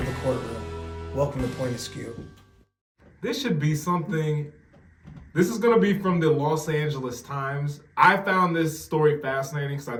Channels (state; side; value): identical; both; correlation 1.00